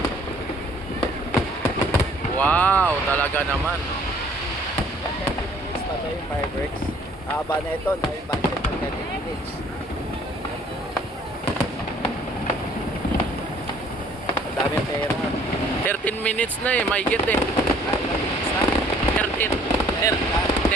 Wow, talaga naman. 30 minutes pa tayo yung fireworks. Haba na ito, na yung budget ng 30 minutes. Ang daming pera. 13 minutes na eh, may get eh. Ilang minutes na?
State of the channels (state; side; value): normal; both; correlation 0.58